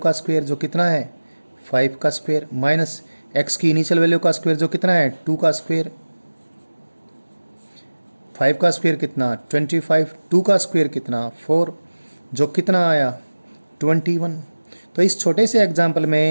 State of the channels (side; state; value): both; inverted; correlation -1.00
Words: स्क्वेयर जो कितना है 5 का स्क्वेयर, माइनस एक्स की इनिशियल वैल्यू का स्क्वेयर जो कितना है 2 का स्क्वेयर, 5 का स्क्वेयर कितना 25, 2 का स्क्वेयर कितना 4, जो कितना आया 21। तो इस छोटे से एग्जाम्पल